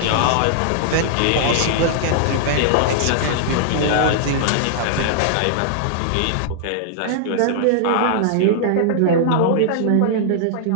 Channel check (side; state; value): both; different; correlation -0.01